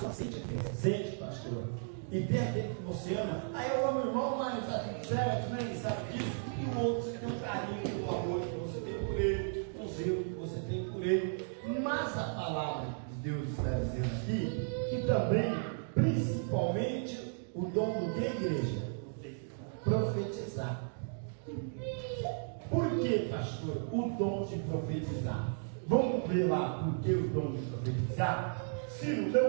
sente, pastor. E tem aquele que você ama, aí eu amo o irmão, mas está tudo certo, né? Ele sabe disso. E o outro, você tem um carinho, um amor que você tem por ele, um zelo que você tem por ele. Mas a palavra de Deus está dizendo aqui que também, principalmente, o dom do que, igreja? Profetizar. Por que, pastor, o dom de profetizar? Vamos ver lá por que o dom de profetizar? Ciro,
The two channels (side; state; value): left; silent; digital silence